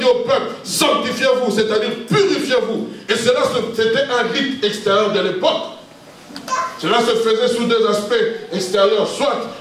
au peuple, sanctifiez-vous, c'est-à-dire purifiez-vous. Et cela, c'était un rite extérieur de l'époque. Cela se faisait sous deux aspects extérieurs. Soit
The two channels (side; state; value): both; identical; correlation 1.00